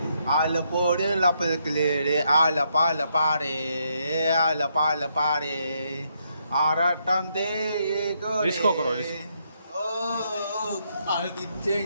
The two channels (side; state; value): both; inverted; correlation -0.76